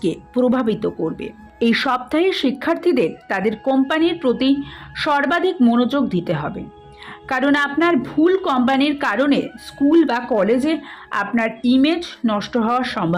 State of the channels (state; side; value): identical; both; correlation 1.00